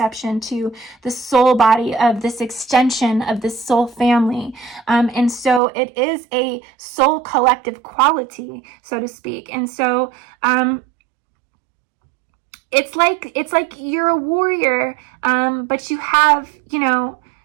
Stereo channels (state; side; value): drops out; left; at 5.6 s